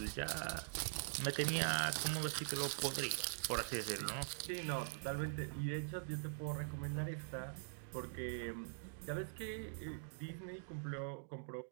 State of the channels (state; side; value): silent; left; digital silence